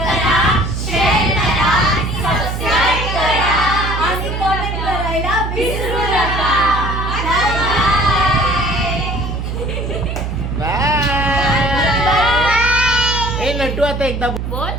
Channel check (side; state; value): right; noise; hum, 4 dB below the sound